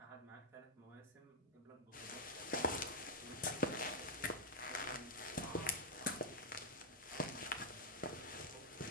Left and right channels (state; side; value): normal; both; correlation -0.01